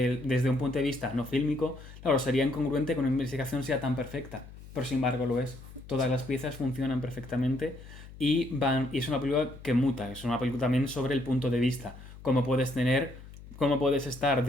desde un punto de vista no fílmico, claro, sería incongruente que una investigación sea tan perfecta, pero sin embargo lo es. Todas las piezas funcionan perfectamente y es una película que muta, es una película también sobre el punto de vista, cómo puedes estar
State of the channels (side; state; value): left; noise; hum, 17 dB below the sound